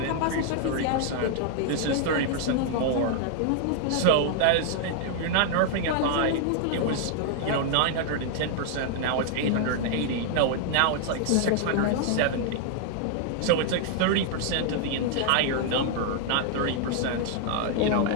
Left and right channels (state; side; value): different; both; correlation 0.00